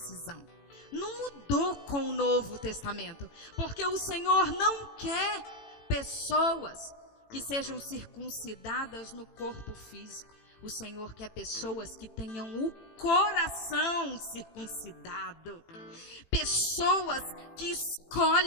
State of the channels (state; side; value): late; right; 18 ms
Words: Não mudou com o Novo Testamento, porque o Senhor não quer pessoas que sejam circuncidadas no corpo físico. O Senhor quer pessoas que tenham o coração circuncidado. Pessoas que